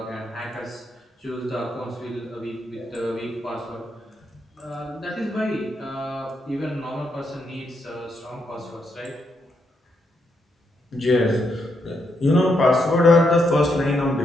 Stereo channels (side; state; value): both; normal; correlation 0.79